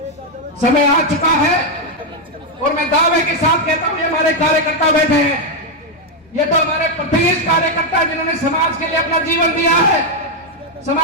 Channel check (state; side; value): normal; both; correlation 0.02